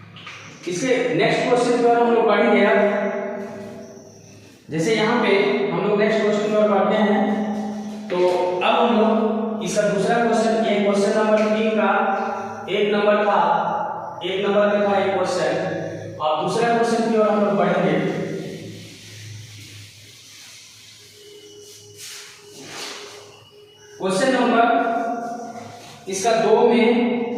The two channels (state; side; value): identical; both; correlation 1.00